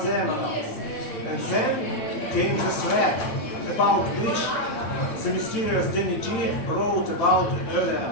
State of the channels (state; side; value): late; right; 8.6 ms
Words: the emeralds. And then came the threat about which the mysterious Danny G wrote about